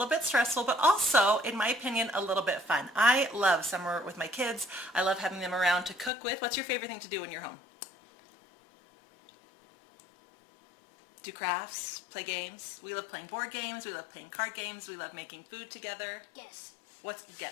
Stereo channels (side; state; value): right; drops out; at 6.1 s